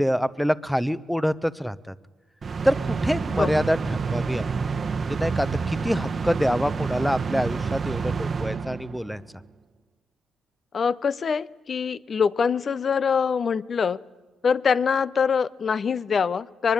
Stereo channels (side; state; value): both; normal; correlation 0.89